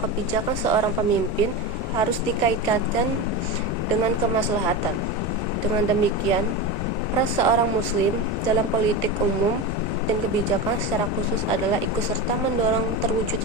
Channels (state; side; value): normal; both; correlation 0.21